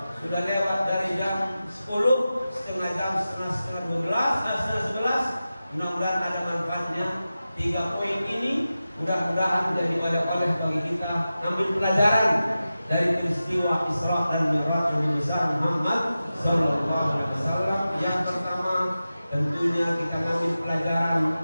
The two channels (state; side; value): inverted; both; correlation -0.94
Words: sudah lewat dari jam 10, setengah jam, setengah 12, setengah 11. Mudah-mudahan ada manfaatnya. 3 poin ini mudah-mudahan menjadi oleh bagi kita ambil pelajaran dari peristiwa Isra dan Mi'raj Nabi Muhammad Sallallahu Alaihi Wasallam. Yang pertama, tentunya kita ambil